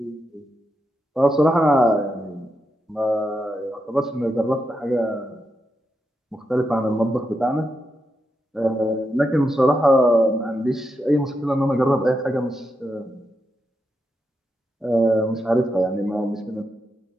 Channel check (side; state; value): both; normal; correlation 0.85